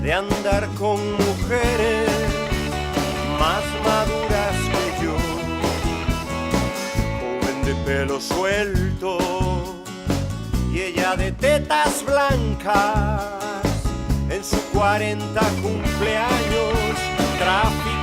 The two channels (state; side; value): identical; both; correlation 1.00